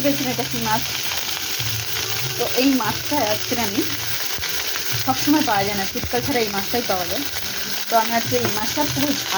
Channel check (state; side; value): identical; both; correlation 1.00